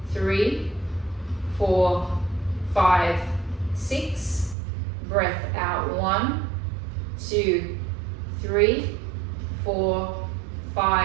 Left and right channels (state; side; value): drops out; left; at 4.5 s